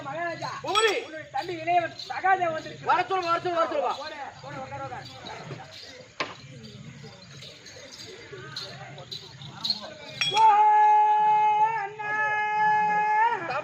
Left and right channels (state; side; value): identical; both; correlation 1.00